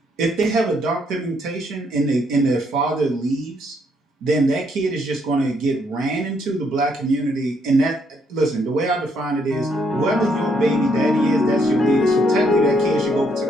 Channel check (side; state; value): both; normal; correlation 0.72